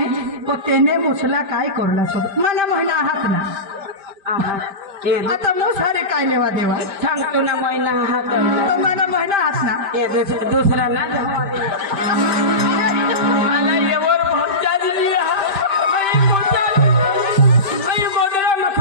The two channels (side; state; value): left; late; 5.1 ms